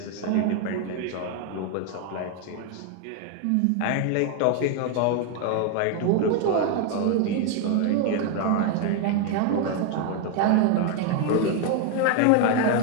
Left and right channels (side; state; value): both; different; correlation 0.01